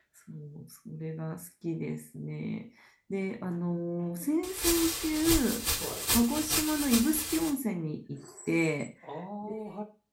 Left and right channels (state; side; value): identical; both; correlation 1.00